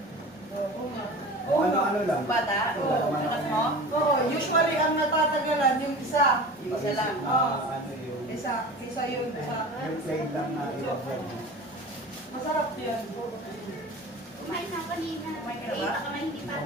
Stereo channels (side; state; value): both; normal; correlation 0.36